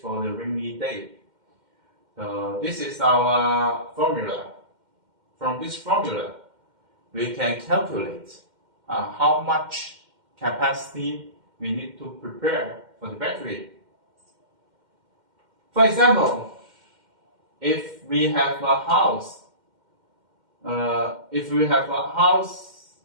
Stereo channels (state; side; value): late; left; 2.1 ms